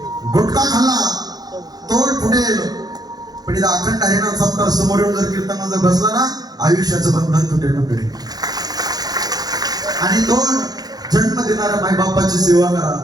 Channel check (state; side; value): late; left; 0.19 ms